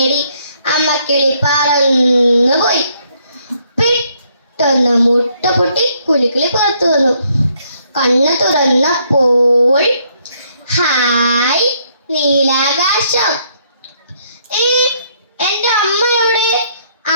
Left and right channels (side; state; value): both; inverted; correlation -0.70